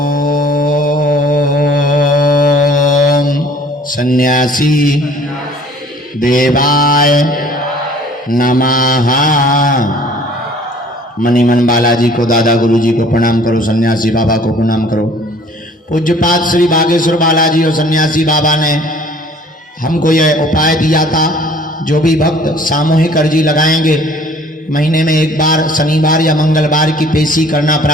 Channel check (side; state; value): both; normal; correlation 0.53